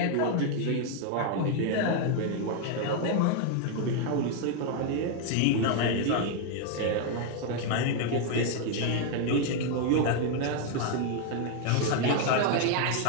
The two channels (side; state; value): both; different; correlation 0.00